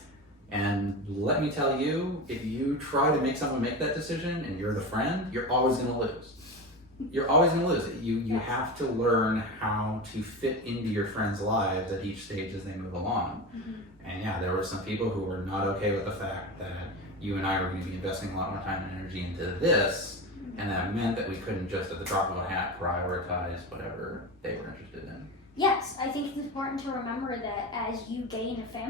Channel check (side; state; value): both; normal; correlation 0.24